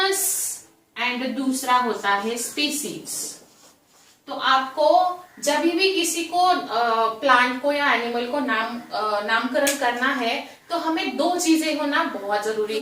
एंड दूसरा होता है स्पीसीज। तो आपको जब भी किसी को प्लांट को या एनिमल को नामकरण करना है तो हमें दो चीजें होना बहुत जरूरी।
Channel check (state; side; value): identical; both; correlation 1.00